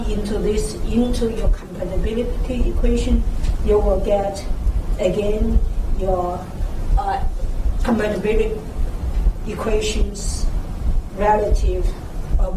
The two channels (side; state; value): both; identical; correlation 1.00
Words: into this into your compatibility equation, you will get again your compatibility equations relative